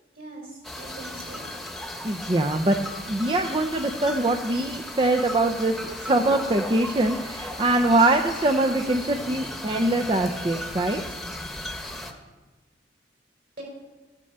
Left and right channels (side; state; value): both; normal; correlation 0.50